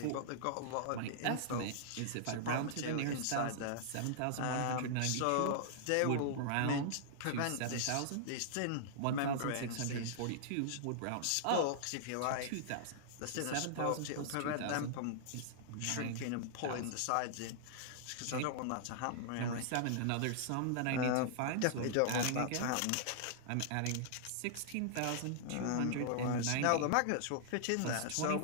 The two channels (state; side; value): different; both; correlation -0.01